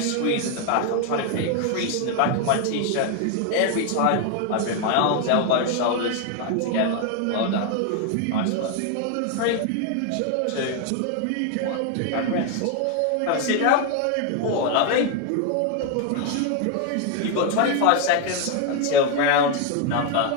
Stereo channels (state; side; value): different; both; correlation 0.01